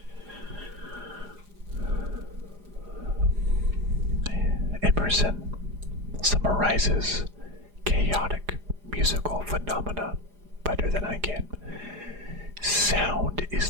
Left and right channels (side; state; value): left; late; 4.9 ms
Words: Emerson summarizes chaotic musical phenomena better than I can. Sound